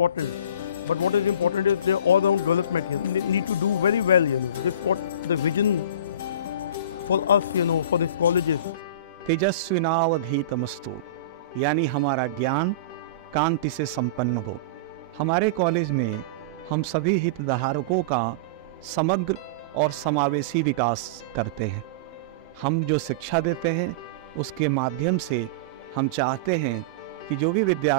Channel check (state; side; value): inverted; both; correlation -0.30